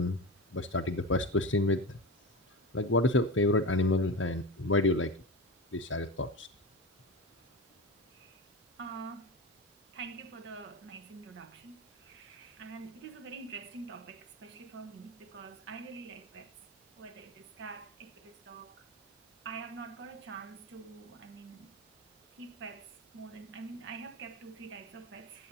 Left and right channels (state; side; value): normal; both; correlation 0.23